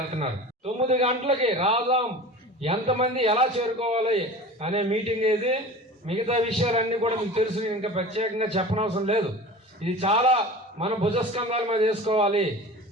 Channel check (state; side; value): normal; both; correlation 0.36